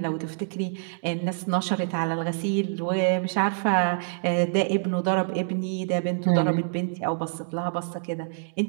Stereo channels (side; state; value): left; silent; digital silence